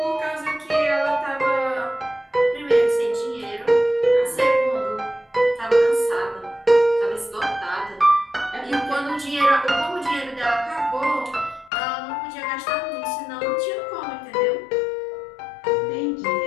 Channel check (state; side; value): drops out; right; at 11.7 s